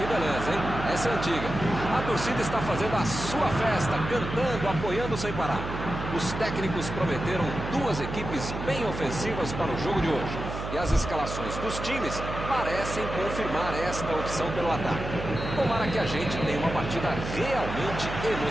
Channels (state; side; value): noise; right; hum, 6 dB below the sound